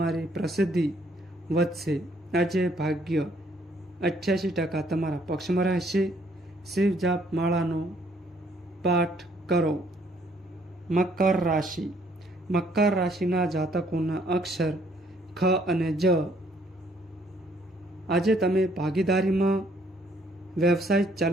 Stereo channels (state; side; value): normal; both; correlation 0.66